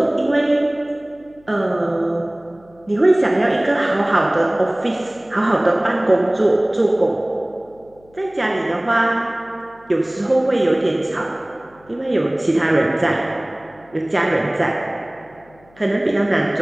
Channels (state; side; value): noise; left; hum, 29 dB below the sound